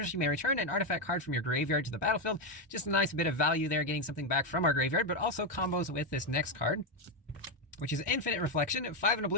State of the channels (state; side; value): normal; both; correlation 0.06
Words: you may return an artifact card from your graveyard to the battlefield. Just a nice bit of value there, getting something back from our graveyard, but also combos with this next card, which is Infinite Reflection, 5 and a